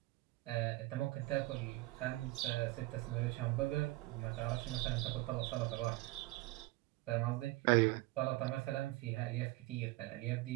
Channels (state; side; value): quieter; left; 19.9 dB